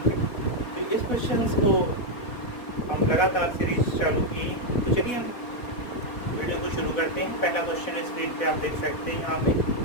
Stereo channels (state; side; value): late; right; 4.1 ms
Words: है। तो इस क्वेश्चन को हम लगातार सीरीज चालू किए। तो चलिए हम वीडियो को शुरू करते हैं। पहला क्वेश्चन स्क्रीन पे आप देख सकते हैं। यहाँ पे